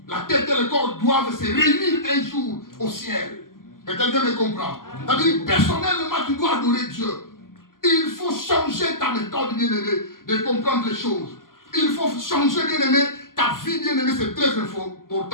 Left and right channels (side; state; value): right; late; 0.91 ms